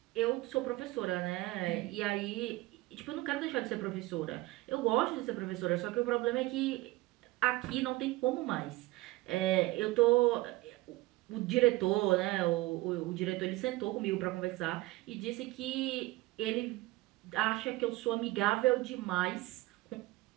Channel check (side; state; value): left; quieter; 19.4 dB